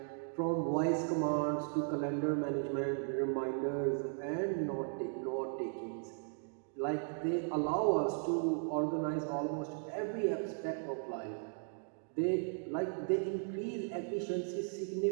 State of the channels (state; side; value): silent; left; 53 dB below the other